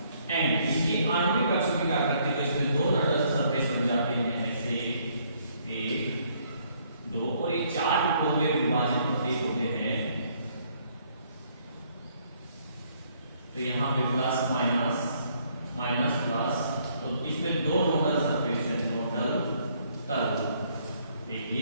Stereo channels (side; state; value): both; inverted; correlation -0.67